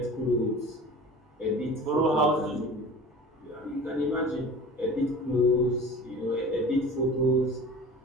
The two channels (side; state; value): both; normal; correlation 0.40